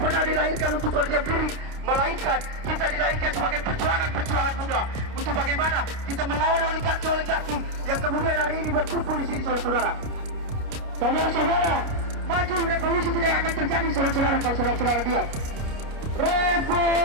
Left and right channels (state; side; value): late; left; 29 ms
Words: pernah dilahirkan untuk berdiam diri, melainkan kita dilahirkan sebagai perjuangan muda untuk bagaimana kita melawan oligarki yang kemudian hari ini berkumpul di sini, saudara-saudara. Saudara-saudara, maju revolusi tidak akan terjadi, saudara-saudara, kalau saudara-saudara diam.